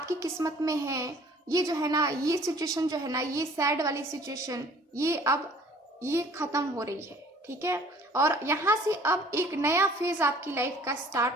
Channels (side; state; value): both; normal; correlation 0.53